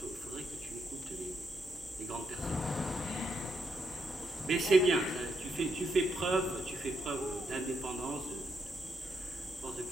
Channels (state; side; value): normal; both; correlation 0.80